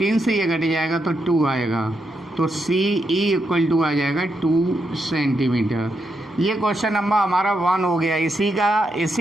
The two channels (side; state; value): both; normal; correlation 0.82